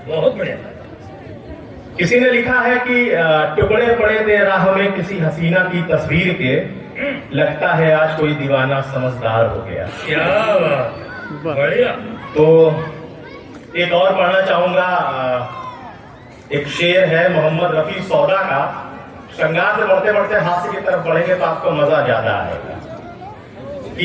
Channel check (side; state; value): both; identical; correlation 1.00